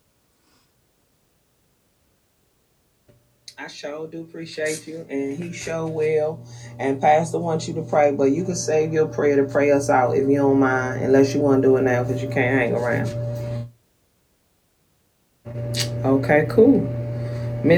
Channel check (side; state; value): both; identical; correlation 1.00